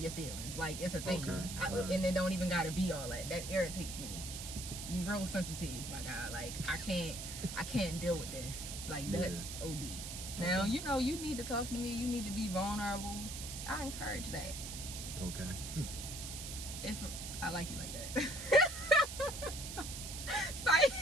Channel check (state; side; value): noise; right; hiss, 7 dB below the sound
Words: your feelings. Like, it's a thing. And it don't even gotta be all that. That irritates me. You real sensitive, my guy. Like, I can't deal with this. Like, that's OD. Now, you know, you need to talk to me, you need to be vulnerable. I encourage that. Okay. If I like you like that.